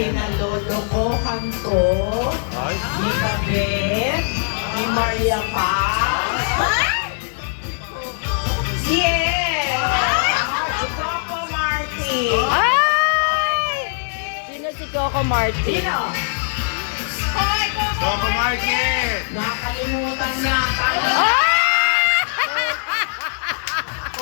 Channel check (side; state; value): right; silent; digital silence